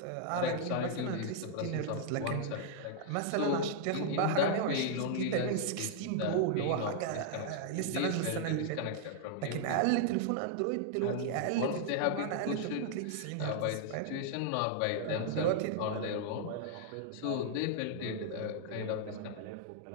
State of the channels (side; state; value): both; different; correlation -0.01